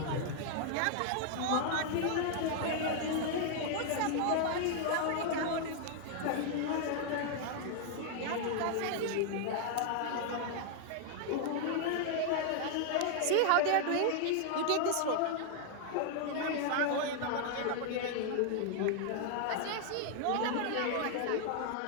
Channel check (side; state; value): both; different; correlation 0.00